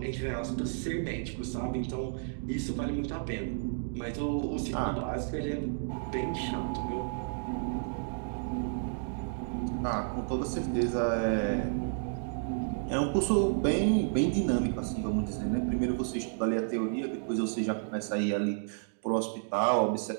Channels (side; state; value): left; silent; digital silence